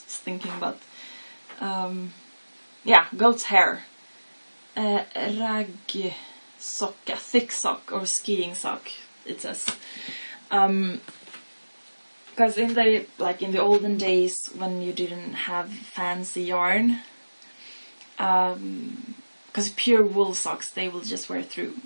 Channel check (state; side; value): inverted; both; correlation -1.00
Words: about, goat's hair. Raggsocka, thick sock or skiing sock, it says. Because in the olden days when you didn't have fancy yarn, because pure wool socks they will just wear through,